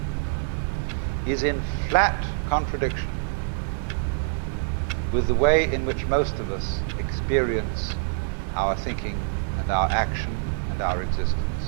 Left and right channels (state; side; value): silent; left; 57 dB below the other